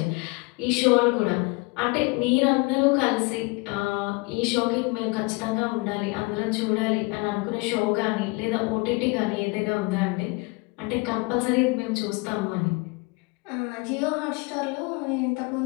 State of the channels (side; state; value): right; quieter; 27.5 dB